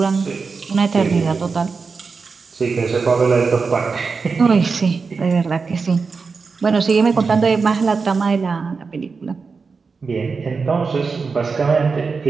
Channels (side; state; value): left; quieter; 4.8 dB